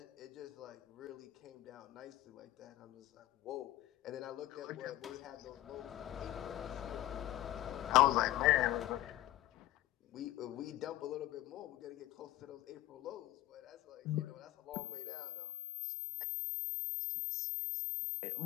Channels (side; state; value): right; quieter; 15.1 dB